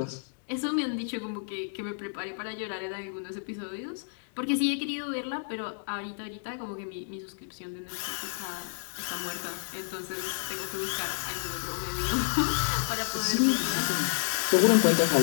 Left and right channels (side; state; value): right; silent; digital silence